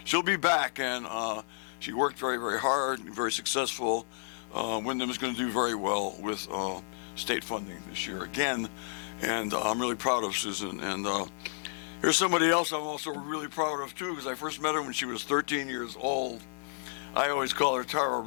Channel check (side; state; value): right; silent; digital silence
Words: she'll be back, and she worked very, very hard, very successful. Windham is going to do very well with state funding this year again, and I'm really proud of Susan. And here's somebody else I'm also really proud of too, because I first met her when she was 13 years old. I always call her Tara